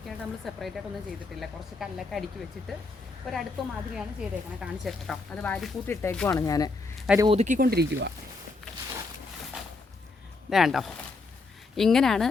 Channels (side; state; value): right; quieter; 3.7 dB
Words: നമ്മൾ സെപ്പറേറ്റ് ആയിട്ടൊന്നും ചെയ്തിട്ടില്ല. കുറച്ച് കല്ലൊക്കെ അടുക്കി വെച്ചിട്ട് ഒരടുപ്പ് മാതിരിയാണ് ചെയ്തേക്കണത്. കാണിച്ചു കേട്ടോ, അത് വാരിക്കൂട്ടി ഇട്ടേക്കുവാണ്. ഞാൻ അത് ഒതുക്കിക്കൊണ്ടിരിക്കുക. വേണ്ടോ, ഇങ്ങനെയാണ്